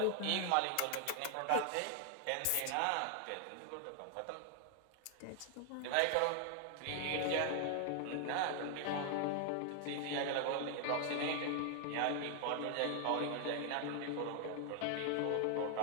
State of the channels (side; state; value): both; different; correlation 0.00